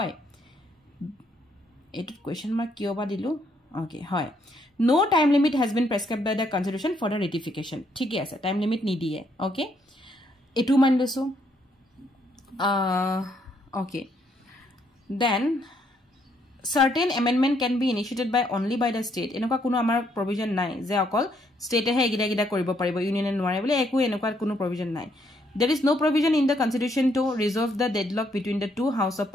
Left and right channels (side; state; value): both; normal; correlation 0.71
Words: এইটো কোৱেশ্চন মাৰ্ক কিয় বা দিলো ওকে হয় no time limit has been prescribed by the constitution for the ratification ঠিকই আছে টাইম লিমিট নিদিয়ে ওকে এটু মান লৈছো okay then certain amendment can be initiated by only by the state এনেকুৱা কোনো আমাৰ provision নাই যে অকল state হে এগিটা কৰিব পাৰিব ইউনিয়ন নোৱাৰে বলে একো এনেকুৱা কোনো provision নাই there is no provision in the constitution to resolve the deadlock between the two house of